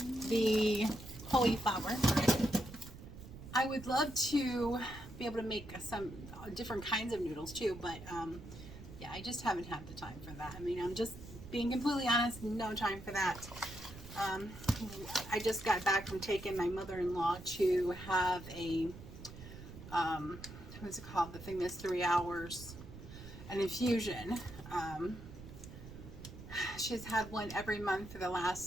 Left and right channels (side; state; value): right; noise; rumble, 14 dB below the sound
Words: the cauliflower. I would love to be able to make some different kinds of noodles too, but yeah, I just haven't had the time for that. I mean, I'm just being completely honest, no time for that. I just got back from taking my mother-in-law to have a what's it called, the thing that's 3 hours, an infusion. She's had one every month for the